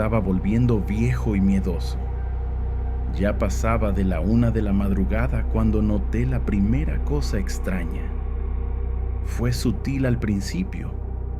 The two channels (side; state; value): both; identical; correlation 1.00